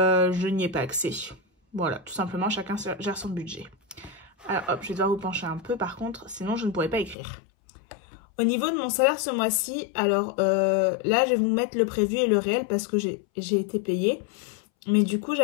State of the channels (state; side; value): drops out; right; at 7.2 s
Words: n'y ai pas accès. Voilà, tout simplement chacun gère son budget. Alors hop, je vais devoir vous pencher un peu par contre, sinon je ne pourrais pas écrire. Au niveau de mon salaire ce mois-ci, alors là, je vais vous mettre le prévu et le réel parce que j'ai été payée. Mais du coup,